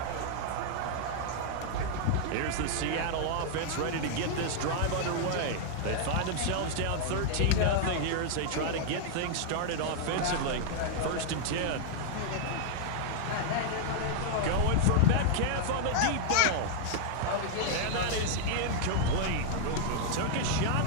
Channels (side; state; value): both; different; correlation -0.01